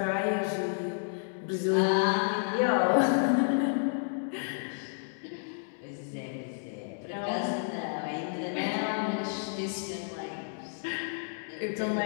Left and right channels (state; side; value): silent; right; digital silence